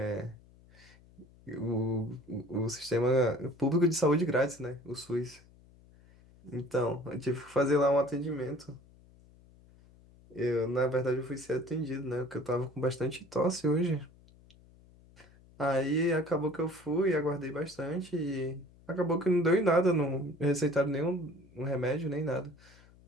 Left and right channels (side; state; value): left; noise; hum, 26 dB below the sound